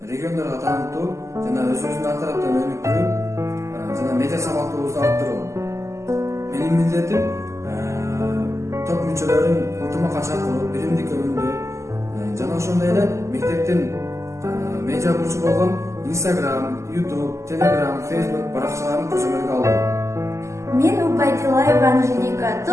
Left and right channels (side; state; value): left; late; 0.14 ms